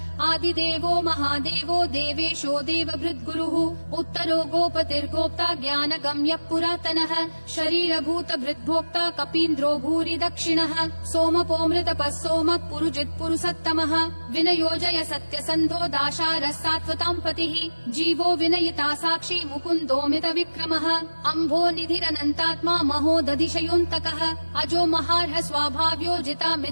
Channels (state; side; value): inverted; both; correlation -1.00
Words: आदिदेवो महादेवो देवेशो देवभृद्गुरुः उत्तरो गोपतिर्गोप्ता ज्ञानगम्यः पुरातनः शरीरभूतभृद्भोक्ता कपीन्द्रो भूरि दक्षिणः सोमपोऽमृतपः सोमः पुरुजित् पुरुषोत्तमः विनयोजय सत्यसन्धो दाशारः सात्वतां पतिः जीवो विनयिता साक्षी मुकुन्दोऽमित विक्रमः अम्भो निधिरनन्तात्मा महोदधिशयोऽन्तकः अजो महार्ह स्वाभाव्यो जिता